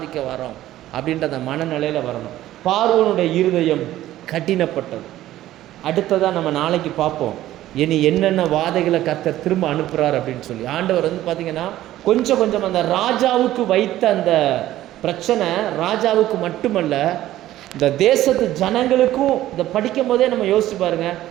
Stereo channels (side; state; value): left; quieter; 14.2 dB